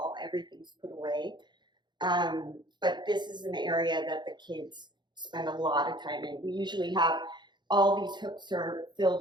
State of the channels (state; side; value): late; left; 0.21 ms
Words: Everything's put away. But this is an area that the kids spend a lot of time in. We usually have all these hooks are